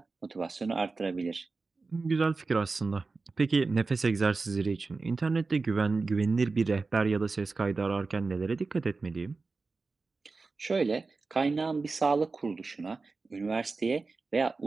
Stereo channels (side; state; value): left; quieter; 4.0 dB